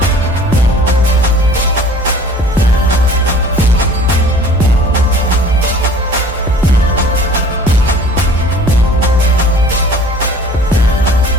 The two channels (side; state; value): both; normal; correlation 0.48